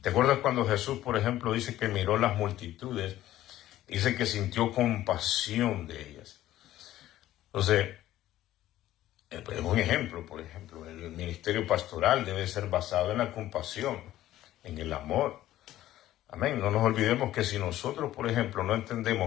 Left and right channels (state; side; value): quieter; right; 14.1 dB